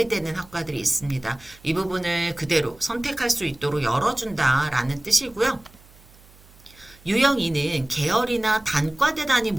학과들이 있습니다. 이 부분을 그대로 선택할 수 있도록 열어준다라는 뜻이고요. 유형 2는 계열이나 단과대 단위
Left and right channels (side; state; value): right; noise; hum, 26 dB below the sound